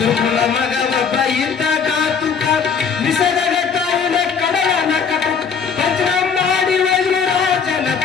ಮಗವಪ್ಪ ಇದ್ದ ಕಾತುಕ ನಿಸರ್ಗ ತಾಯಿನ ಕಡಲನ ಕಟುಕ ವಜ್ರ ಮಾಡಿ ವಜ್ರು ರಾಜನ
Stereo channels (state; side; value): quieter; right; 6.2 dB